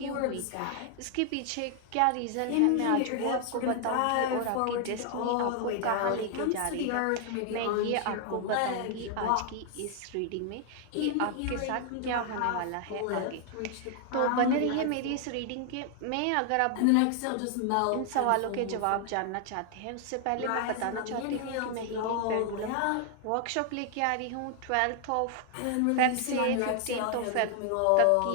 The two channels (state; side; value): different; both; correlation 0.00